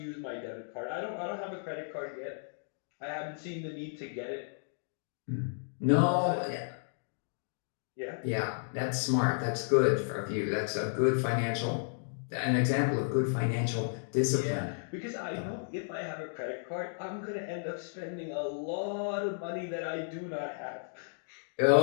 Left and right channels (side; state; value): right; silent; digital silence